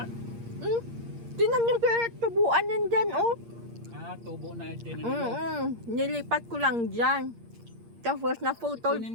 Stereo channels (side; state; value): left; late; 8.6 ms